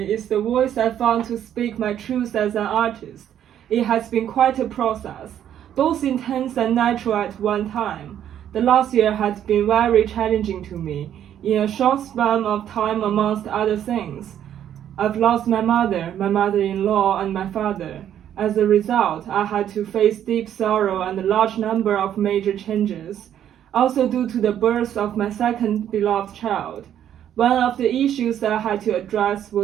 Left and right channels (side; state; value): left; quieter; 10.3 dB